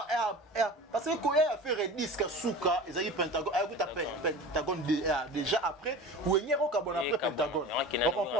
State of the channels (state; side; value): normal; both; correlation 0.35